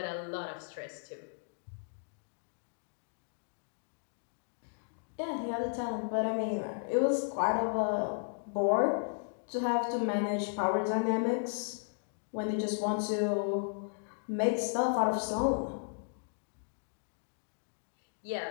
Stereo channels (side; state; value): right; silent; digital silence